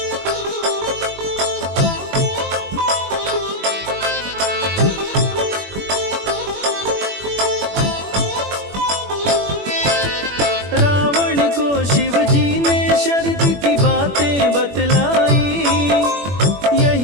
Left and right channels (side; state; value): left; late; 21 ms